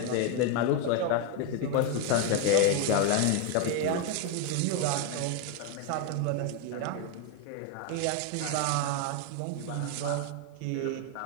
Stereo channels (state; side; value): different; both; correlation 0.01